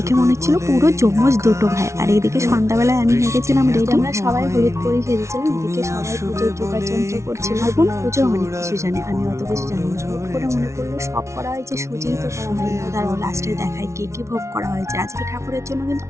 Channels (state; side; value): late; left; 0.13 ms